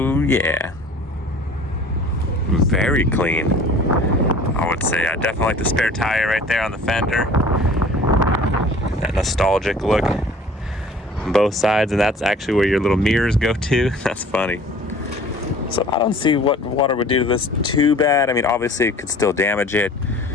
yeah. Very clean, I would say. I definitely like the spare tire right there on the fender. That nostalgic look on both sides, and that's actually where your little mirrors go to. That's funny. So I don't see what water would do to this too bad. I mean, obviously it could still damage it,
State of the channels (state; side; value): normal; both; correlation 0.47